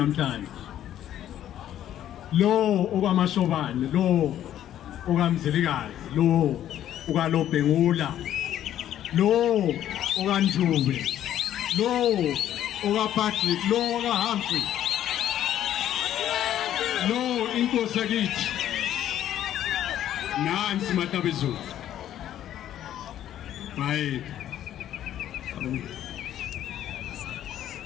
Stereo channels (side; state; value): right; quieter; 11.5 dB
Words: lo okwamashobane lo okamzilikazi lo okalobhengula lo okanjube lo okaPatrick lo okaHumphrey lo INkosi yakithi nansi matabezo bye